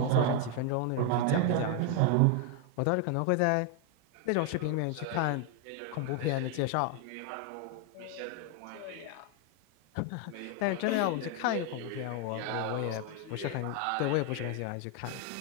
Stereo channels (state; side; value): different; both; correlation 0.01